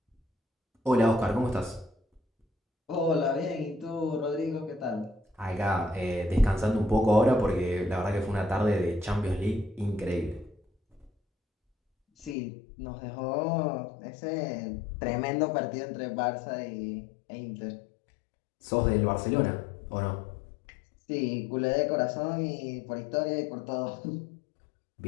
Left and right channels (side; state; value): right; drops out; at 12.4 s